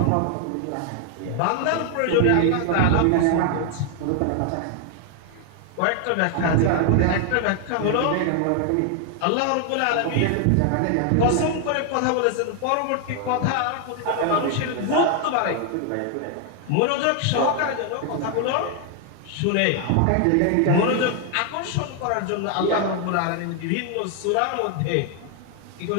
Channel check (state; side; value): different; both; correlation 0.00